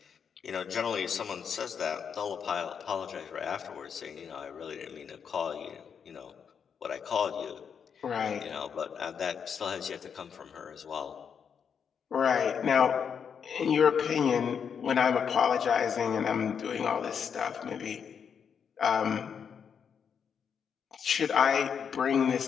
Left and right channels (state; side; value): quieter; right; 7.1 dB